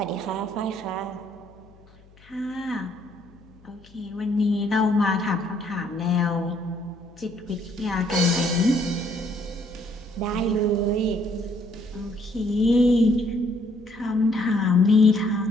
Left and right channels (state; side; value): noise; left; hum, 26 dB below the sound